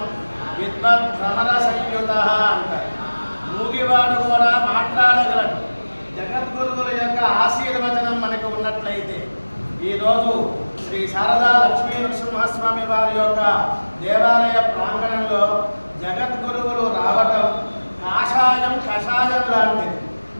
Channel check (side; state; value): both; inverted; correlation -1.00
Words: విద్వద్భ్రమరసంయుతః అంటారు. మూగివాడు కూడా మాట్లాడగలడు. జగద్గురువుల యొక్క ఆశీర్వచనం మనకు ఉన్నట్లయితే ఈరోజు శ్రీ శారదా లక్ష్మీ నరసింహస్వామి వారి యొక్క దేవాలయ ప్రాంగణంలో జగద్గురువులు రావటం కాషాయం కషాయం లాంటిది.